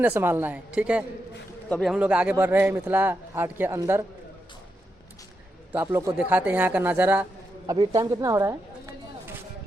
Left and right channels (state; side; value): normal; both; correlation 0.85